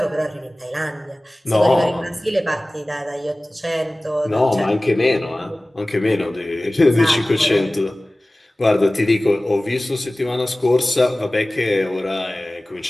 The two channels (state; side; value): normal; both; correlation 0.98